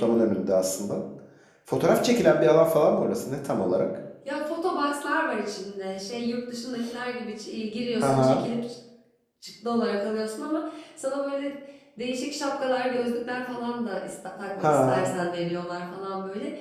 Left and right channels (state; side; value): identical; both; correlation 1.00